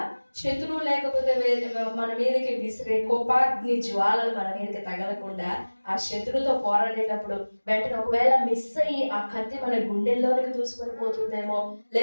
శత్రువు లేకపోతే మన మీదకి విసిరే కోపాగ్ని జ్వాలలు మన మీదకి తగలకుండా, ఆ శత్రువుతో పోరాడేటప్పుడు వెంటనే ఒకవేళ మిస్ అయ్యి ఆ కత్తి మన గుండెల్లోనికి దూసుకొని పోతుందేమో,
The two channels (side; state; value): both; inverted; correlation -1.00